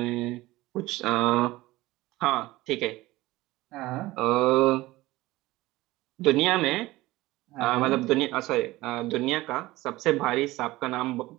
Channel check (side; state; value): left; quieter; 18.6 dB